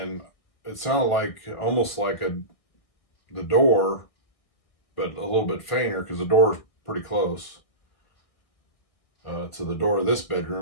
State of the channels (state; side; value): late; right; 1.6 ms